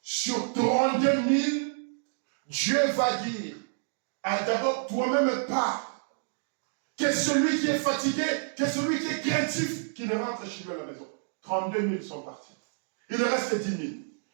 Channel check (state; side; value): silent; left; digital silence